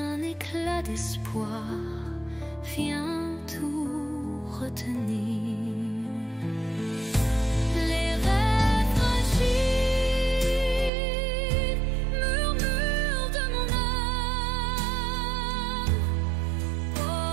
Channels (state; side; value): drops out; left; at 10.9 s